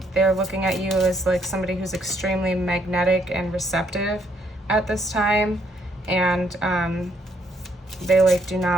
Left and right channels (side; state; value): both; normal; correlation 0.71